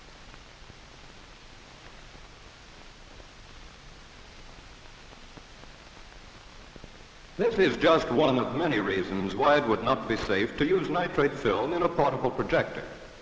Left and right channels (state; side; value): identical; both; correlation 1.00